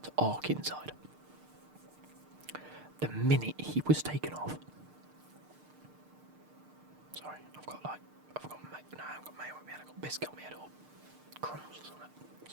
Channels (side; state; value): left; late; 6.6 ms